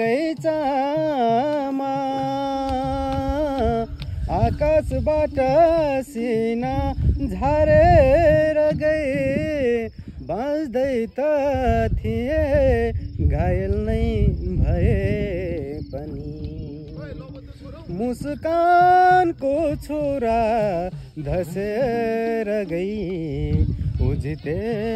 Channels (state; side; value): identical; both; correlation 1.00